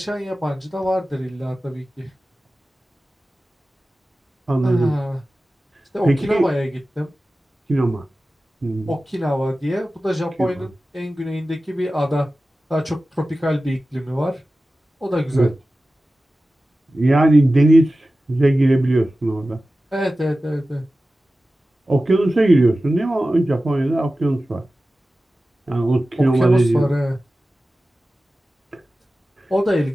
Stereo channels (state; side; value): normal; both; correlation 0.95